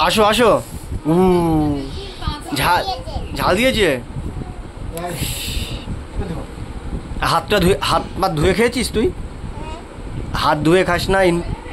আসো আসো। ঝাল ঝাল দিয়েছে। হাতটা ধুয়ে, হাত পাত ধুয়ে খেয়েছিস তুই? হাত ধুয়ে খাস না?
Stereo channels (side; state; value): both; identical; correlation 1.00